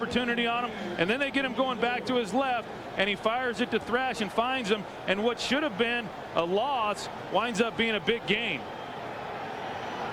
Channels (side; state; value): both; identical; correlation 1.00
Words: on him, and then they get him going back to his left, and he fires it to Thrash and finds him, and what should have been a loss winds up being a big gain.